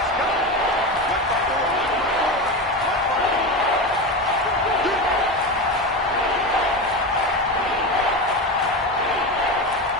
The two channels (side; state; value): both; normal; correlation 0.21